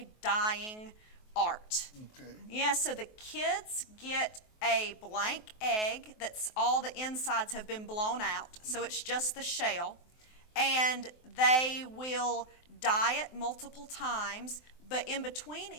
dyeing art. Okay. Yeah, so the kids get a blank egg that's all the insides have been blown out, so it's just the shell, and they will dye it multiple times, but in between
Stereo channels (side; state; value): right; late; 23 ms